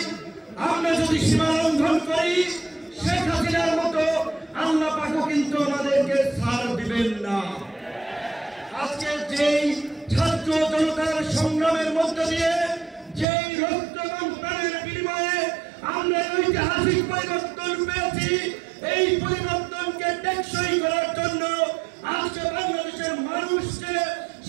আমরা যদি সীমা লঙ্ঘন করি শেখ হাসিনার মতো আল্লাহ পাকও কিন্তু আমাদেরকে ছাড় দিবেন না। আজকে যেই ছাত্র জনতার সংগ্রামের মধ্য দিয়ে যেই রক্ত এবং প্রাণের বিনিময়ে আমরা ঐতিহাসিক পরিবর্তন পেয়েছি, এই পরিবর্তনকে টেকসই করার জন্য আজকে বাংলাদেশের মানুষকে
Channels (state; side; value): drops out; left; at 13.2 s